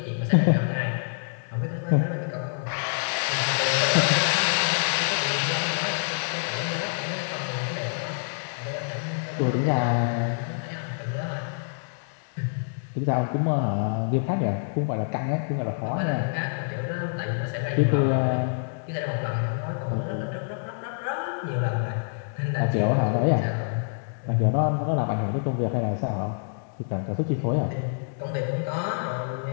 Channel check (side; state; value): right; silent; digital silence